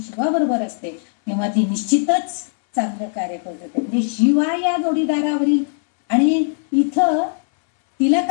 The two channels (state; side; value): silent; right; 62 dB below the other